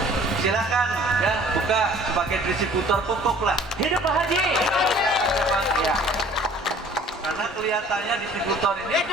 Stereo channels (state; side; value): normal; both; correlation 0.52